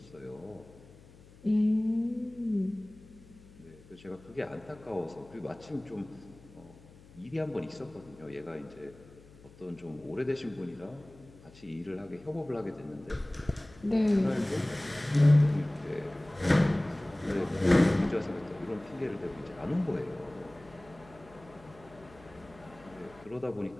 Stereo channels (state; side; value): noise; left; hum, 23 dB below the sound